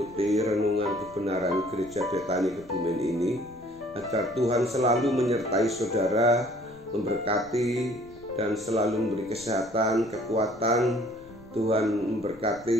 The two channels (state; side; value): noise; left; rumble, 24 dB below the sound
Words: renungan kebenaran Gereja Betani Kebumen ini, agar Tuhan selalu menyertai saudara, memberkati dan selalu memberi kesehatan, kekuatan. Tuhan